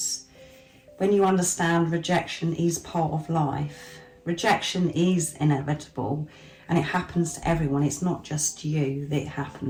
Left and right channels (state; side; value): identical; both; correlation 1.00